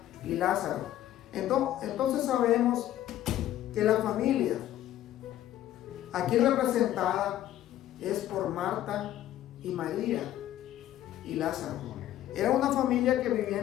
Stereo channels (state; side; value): quieter; right; 12.8 dB